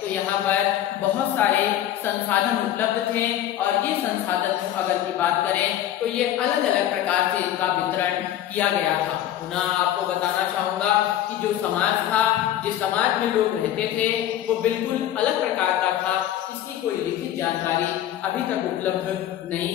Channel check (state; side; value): quieter; right; 11.9 dB